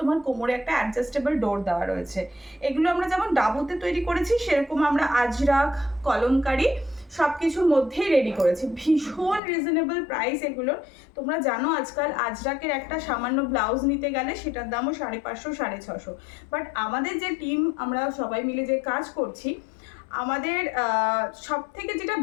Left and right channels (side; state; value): right; drops out; at 9.4 s